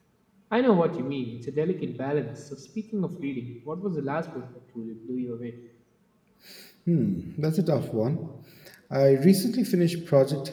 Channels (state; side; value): identical; both; correlation 1.00